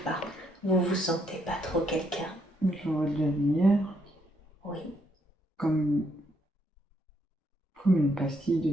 par vous vous sentez pas trop quelqu'un? Je vois de la lumière. Oui. Comme une pastille de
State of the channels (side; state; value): both; normal; correlation 0.74